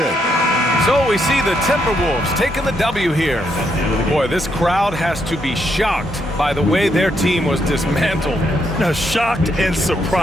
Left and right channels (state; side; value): normal; both; correlation 0.77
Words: So we see the Timberwolves taking the W here. Boy, this crowd has to be shocked by the way their team was dismantled. Now, shocked and